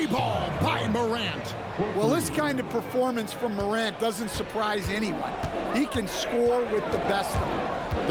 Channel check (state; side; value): identical; both; correlation 1.00